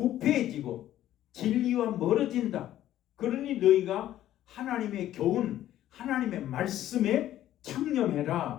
진리와 멀어진다. 그러니 너희가 하나님의 교훈, 하나님의 말씀에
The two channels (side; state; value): right; quieter; 12.8 dB